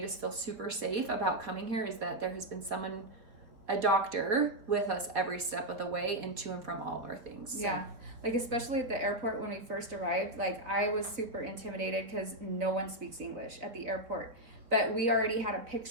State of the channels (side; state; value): left; late; 4.3 ms